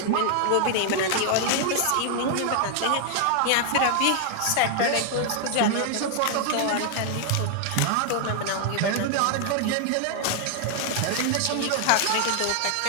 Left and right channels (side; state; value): both; different; correlation 0.00